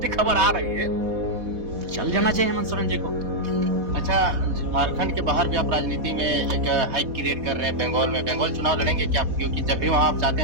खबर आ रही है तो चल जाना चाहिए हेमंत सोरेन जी को। अच्छा, झारखंड के बाहर भी आप राजनीति में एक हाइक क्रिएट कर रहे हैं। बंगाल में बंगाल चुनाव लड़ेंगे क्या? क्योंकि जब भी वहां आप जाते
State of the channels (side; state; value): left; late; 4.2 ms